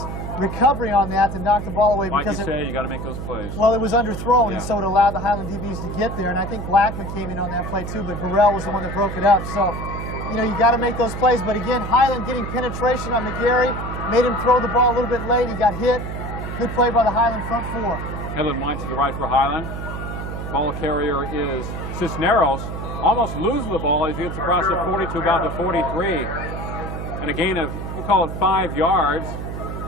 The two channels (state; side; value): noise; right; hum, 6 dB below the sound